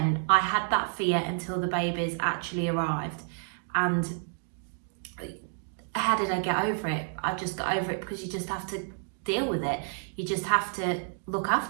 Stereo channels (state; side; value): silent; left; 58 dB below the other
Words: I had that fear until the babies actually arrived. And how did I get over it? I just got over it because you just have to deal with it. You just have to look